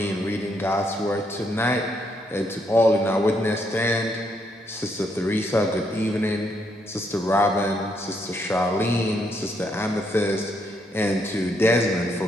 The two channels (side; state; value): both; normal; correlation 0.75